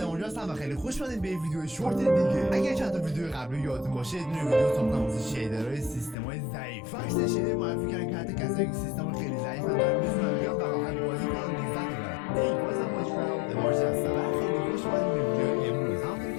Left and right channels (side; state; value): right; drops out; at 6.2 s